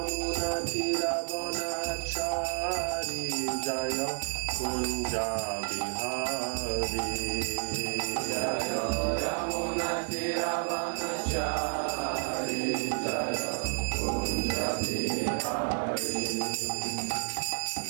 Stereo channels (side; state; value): left; silent; 57 dB below the other